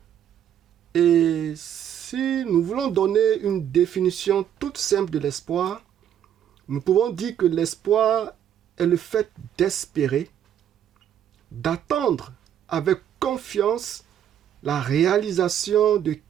Et si nous voulons donner une définition toute simple de l'espoir, nous pouvons dire que l'espoir est le fait d'espérer, d'attendre avec confiance la réalisation de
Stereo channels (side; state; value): left; quieter; 9.9 dB